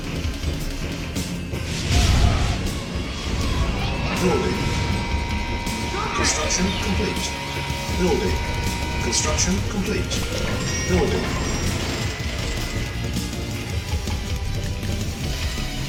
Building. Construction complete. Building. Construction complete. Building.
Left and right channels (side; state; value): both; identical; correlation 1.00